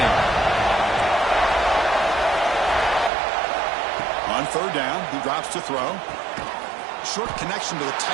On 3rd down, he drops to throw. Short connection to the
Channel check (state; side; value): drops out; left; at 3.1 s